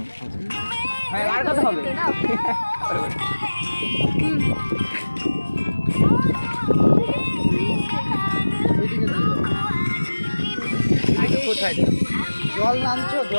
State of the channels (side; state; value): both; inverted; correlation -1.00